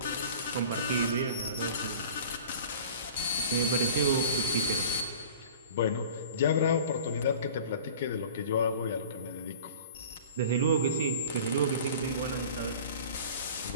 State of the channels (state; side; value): inverted; both; correlation -0.42